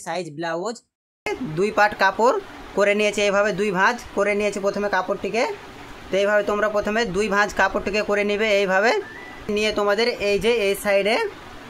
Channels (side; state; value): both; identical; correlation 1.00